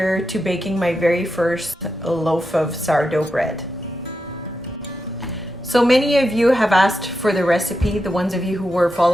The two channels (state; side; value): normal; both; correlation 0.87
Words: to baking my very first loaf of sourdough bread. So many of you have asked for the recipe, the ones of you who were